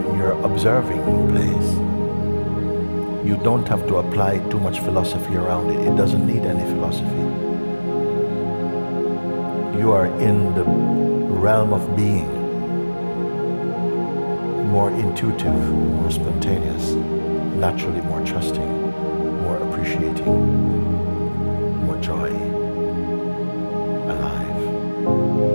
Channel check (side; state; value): both; inverted; correlation -1.00